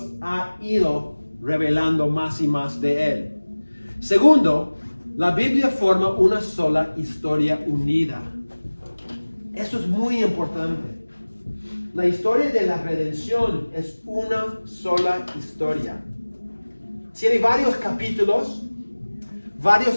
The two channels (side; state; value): both; inverted; correlation -1.00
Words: ha ido revelando más y más de Él? Segundo, la Biblia forma una sola historia unida. Esto es muy importante. La historia de la redención es una sola historia. Tiene varios capítulos, varios